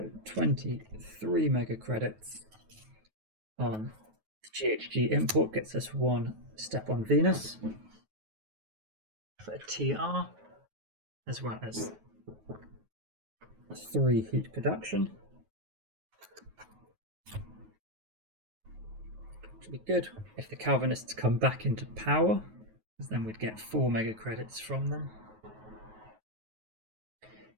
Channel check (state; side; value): late; left; 9.3 ms